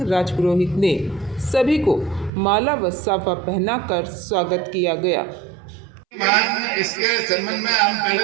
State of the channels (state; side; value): drops out; left; at 2.3 s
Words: राजपुरोहित ने सभी को माला व साफा पहनाकर स्वागत किया गया। इसके संबंध में हम